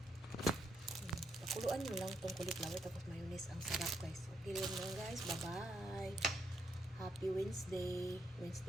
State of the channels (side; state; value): both; normal; correlation 0.77